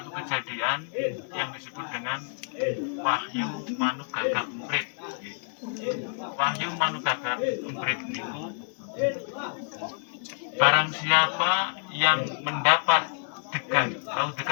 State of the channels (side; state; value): right; silent; 58 dB below the other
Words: kejadian yang disebut dengan Wahyu Manugagak Emprit. Wahyu Manugagak Emprit niku barang siapa yang mendapat degan, tahu